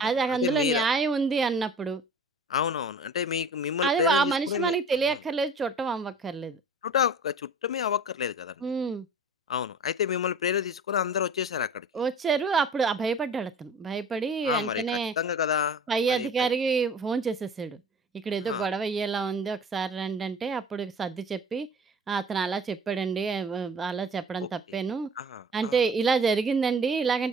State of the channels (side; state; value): both; normal; correlation 0.43